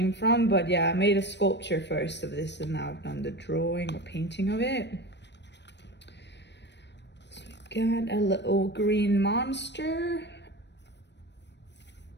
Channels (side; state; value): right; late; 0.51 ms